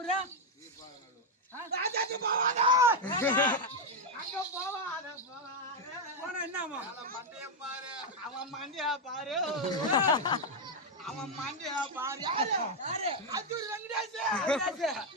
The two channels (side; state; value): both; normal; correlation 0.03